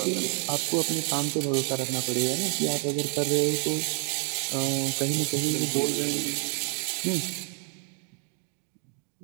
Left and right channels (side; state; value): left; quieter; 40.0 dB